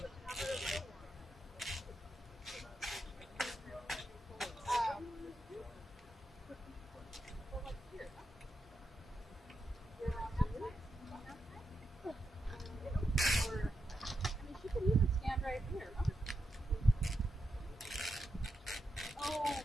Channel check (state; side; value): normal; both; correlation 0.86